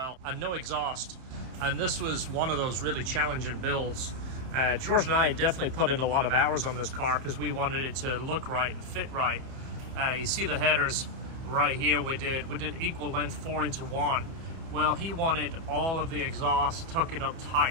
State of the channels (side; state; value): left; late; 30 ms